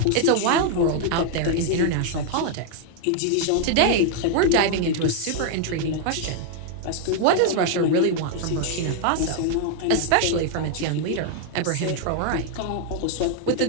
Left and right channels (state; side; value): different; both; correlation 0.00